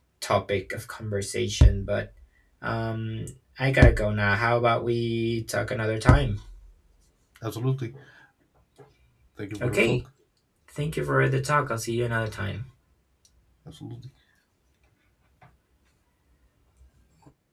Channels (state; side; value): identical; both; correlation 1.00